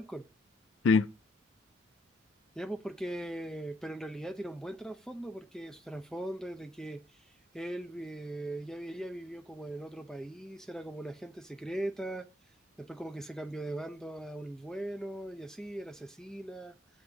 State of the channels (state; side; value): normal; both; correlation 0.73